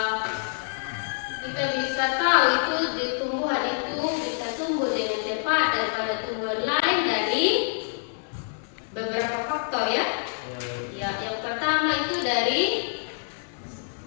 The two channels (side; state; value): right; silent; 61 dB below the other